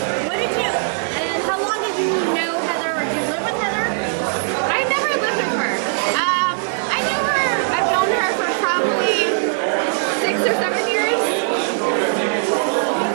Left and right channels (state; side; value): silent; left; 66 dB below the other